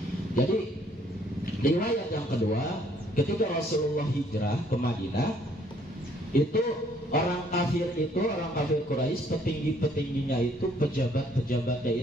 Jadi riwayat yang kedua, ketika Rasulullah hijrah ke Madinah, itu orang kafir Quraisy, petinggi-petingginya itu, pejabat-pejabatnya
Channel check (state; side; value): normal; both; correlation 0.64